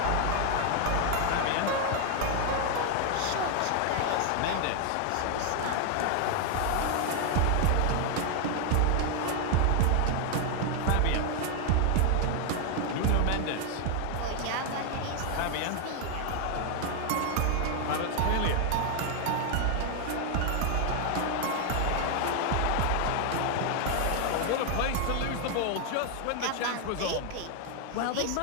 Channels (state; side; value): different; both; correlation 0.00